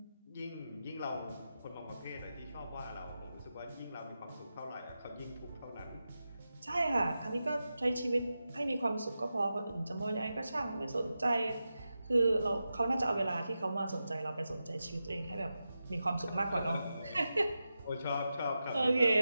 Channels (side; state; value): both; inverted; correlation -0.91